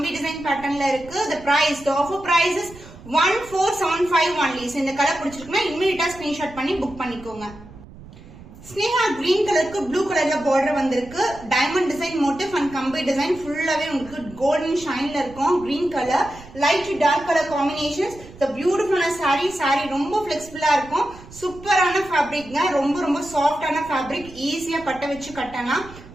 டிசைன் பேட்டர்ன்ல இருக்கு. the offer price is 1475 only. இந்த கலர் பிடிச்சிருக்குன்னா இமிடியேட்டா ஸ்கிரீன்ஷாட் பண்ணி புக் பண்ணிக்கோங்க. ஸ்னேகா கிரீன் கலருக்கு ப்ளூ கலர்ல பார்டர் வந்திருக்கு. டைமண்ட் டிசைன் மோட்டிவ் அண்ட் கம்பி டிசைன் ஃபுல்லாவே உங்களுக்கு கோல்டன் ஷைன்ல இருக்கும். Green colour light dark colour combinations. பியூட்டிஃபுல்லான சாரி ரொம்ப பிளெக்சிபிளா இருக்கும். சூப்பரான ஃபேப்ரிக்ங்க. ரொம்ப சாஃப்டான ஃபேப்ரிக். ஈஸியா பட்ட வச்சு கட்டலாம்.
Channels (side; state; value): right; noise; rumble, 19 dB below the sound